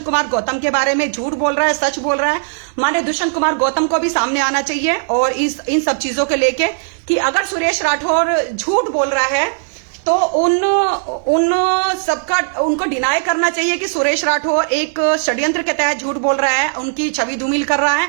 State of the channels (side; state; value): left; silent; digital silence